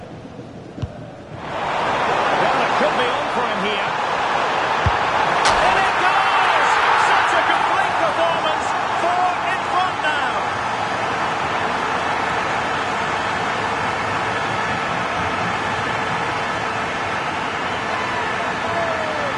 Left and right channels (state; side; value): identical; both; correlation 1.00